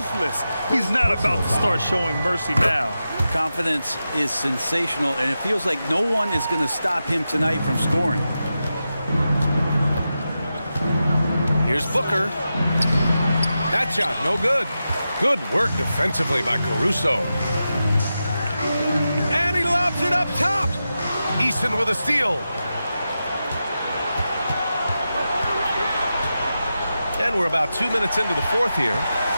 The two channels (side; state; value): both; inverted; correlation -0.91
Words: He's not about to start showing mercy now. Confidence is sensational, and it feels like no one is going to stop him tonight from scoring. Here's Booker. That shot, no good. Good work defensively by Caruso. And he Puts it up top. Easton with a steal. And we're about 2 minutes into the fourth here.